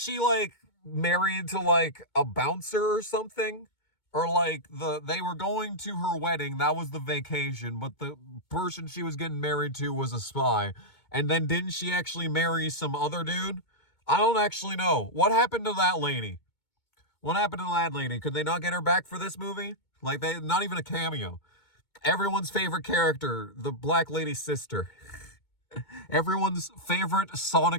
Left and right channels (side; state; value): right; late; 2.2 ms